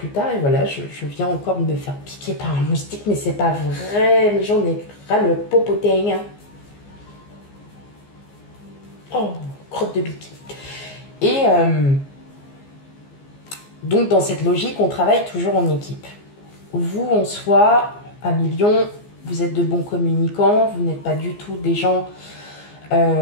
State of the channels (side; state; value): right; late; 14 ms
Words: tard. Et voilà, je viens encore de me faire piquer par un moustique, mais c'est pas vrai, mais j'en ai ras le popotin. Oh, crotte de bique. Et donc dans cette logique, on travaille toujours en équipe. Vous, en soi, à millions, vous êtes de bons communicants, vous n'êtes pas du tout des gens,